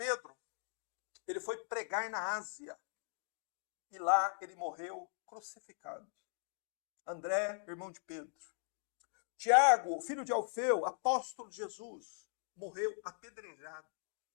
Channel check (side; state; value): right; silent; digital silence